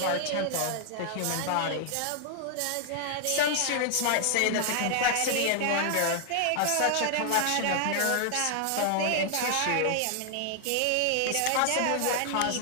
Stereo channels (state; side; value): different; both; correlation 0.00